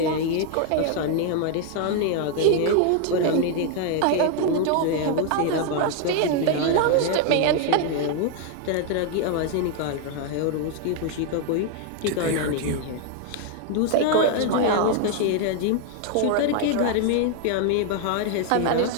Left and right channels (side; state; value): both; different; correlation 0.00